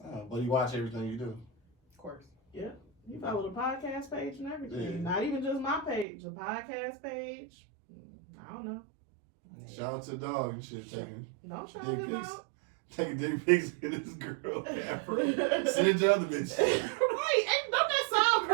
Oh, but you watch everything you do. Of course. He followed the podcast page and everything. Yeah. Not even just my page, the podcast page. I don't know. Shout out to the dog and shit, taking Don't shout dick him pics. out. Taking dick pics in this girl. Send it to other bitches. Right. Don't that sound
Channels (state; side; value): drops out; left; at 6.1 s